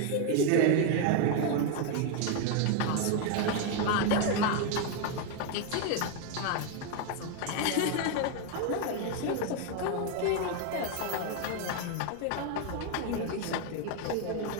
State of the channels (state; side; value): different; both; correlation 0.01